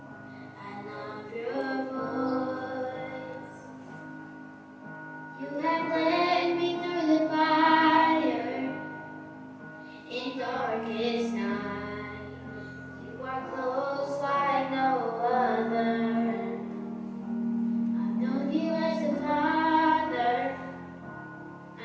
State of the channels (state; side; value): identical; both; correlation 1.00